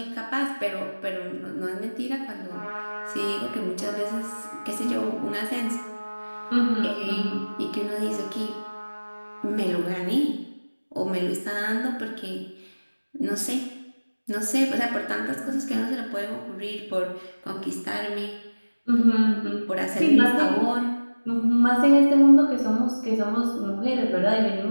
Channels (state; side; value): inverted; both; correlation -1.00